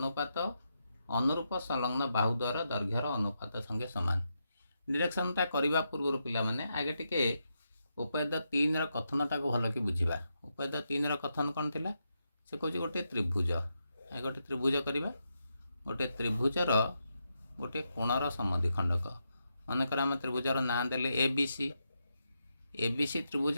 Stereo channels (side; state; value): both; inverted; correlation -0.84